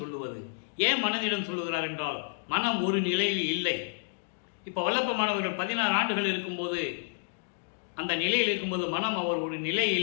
ஏன் மனதிடம் சொல்லுகிறார் என்றால், மனம் ஒரு நிலையில் இல்லை. இப்போ வல்லப்ப மாணவர்கள் 16 ஆண்டுகள் இருக்கும்போது, அந்த நிலையில் இருக்கும்போது மனம் அவர் ஒரு நிலை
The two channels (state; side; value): silent; right; digital silence